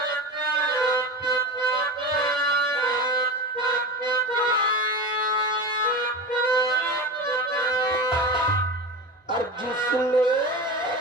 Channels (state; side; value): normal; both; correlation 0.26